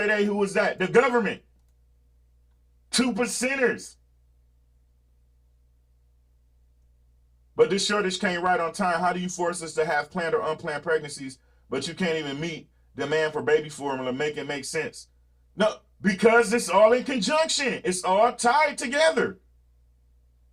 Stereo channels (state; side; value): identical; both; correlation 1.00